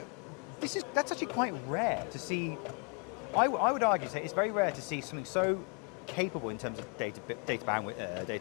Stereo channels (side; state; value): right; quieter; 35.5 dB